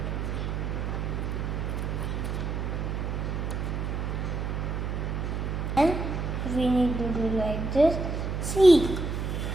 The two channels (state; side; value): noise; right; hum, 2 dB below the sound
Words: And we need to do like this. See,